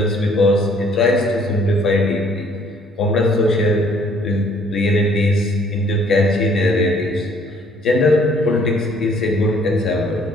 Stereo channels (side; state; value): both; normal; correlation 0.60